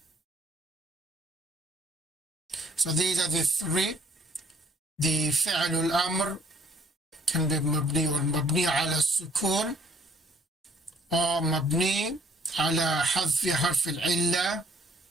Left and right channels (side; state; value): both; normal; correlation 0.62